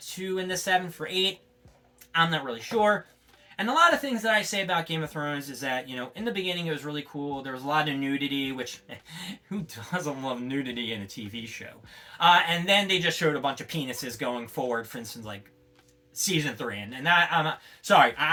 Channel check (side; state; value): both; identical; correlation 1.00